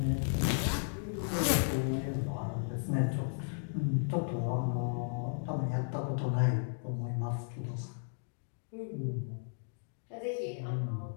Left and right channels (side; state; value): right; silent; digital silence